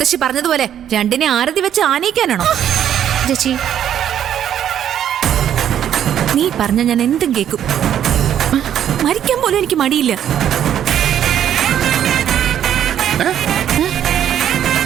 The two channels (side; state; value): left; quieter; 10.1 dB